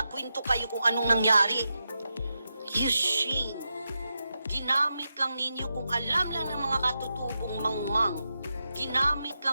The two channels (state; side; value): inverted; both; correlation -0.88